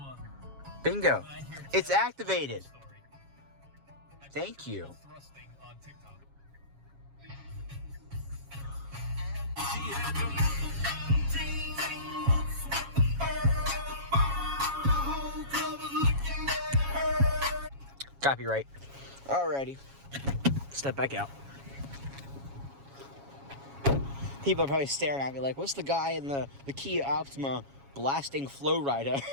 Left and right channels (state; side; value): late; left; 7.3 ms